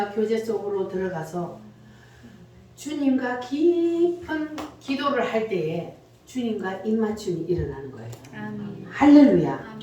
교제 속으로 들어가서 주님과 깊은 기도를 할 때에 주님과 입맞춤이 일어나는 거예요. 아멘. 할렐루야.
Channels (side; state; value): both; identical; correlation 1.00